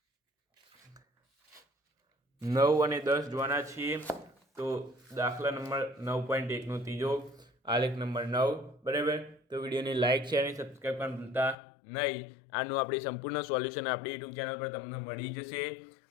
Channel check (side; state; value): right; drops out; at 11.6 s